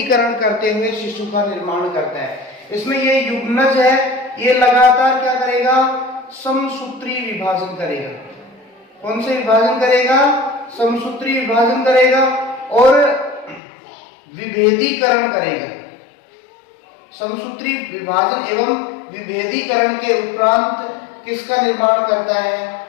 करते हुए शिशु का निर्माण करता है। इसमें ये युग्मज है, ये लगातार क्या करेगा? समसूत्री विभाजन करेगा। कौन से विभाजन करेगा? समसूत्री विभाजन करेगा और विभेदीकरण करेगा। समसूत्री विभाजन एवं विभेदीकरण के उपरांत किसका निर्माण करता है?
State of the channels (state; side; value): drops out; right; at 13.6 s